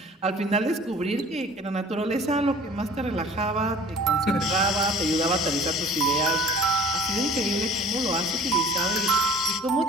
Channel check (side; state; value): both; normal; correlation 0.47